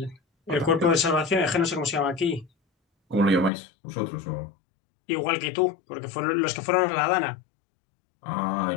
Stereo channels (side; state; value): right; drops out; at 3.5 s